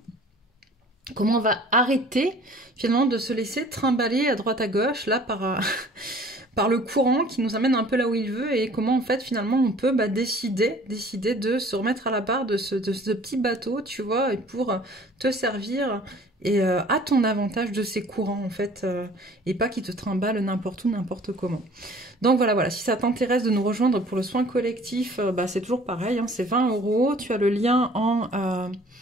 Comment on va arrêter finalement de se laisser trimballer à droite à gauche là par le courant qui nous amène un peu là où il veut, et comment en fait finalement on peut décider de se remettre à la barre de ce petit bateau, tu vois, et pour te servir et à ton avantage de ces courants en fait, et pas qui te trimballent n'importe où, n'importe comment. Donc voilà, si ça t'intéresse de nous rejoindre pour le soin collectif, c'est toujours pareil, hein, c'est 20 €, tu as le lien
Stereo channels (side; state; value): both; normal; correlation 0.51